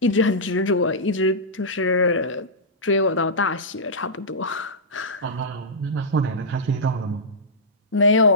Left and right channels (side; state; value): both; normal; correlation -0.12